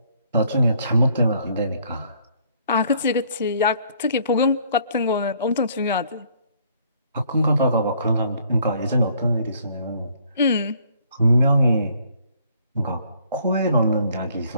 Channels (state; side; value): inverted; both; correlation -0.63